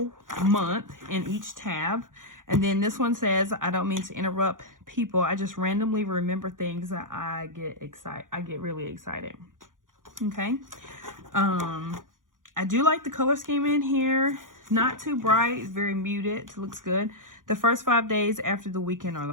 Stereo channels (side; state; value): left; late; 0.89 ms